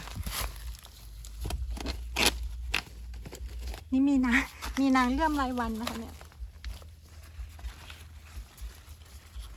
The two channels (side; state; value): both; identical; correlation 1.00